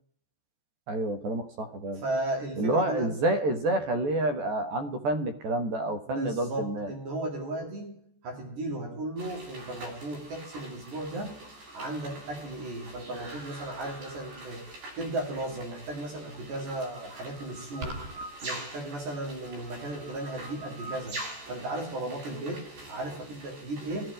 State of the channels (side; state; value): left; late; 14 ms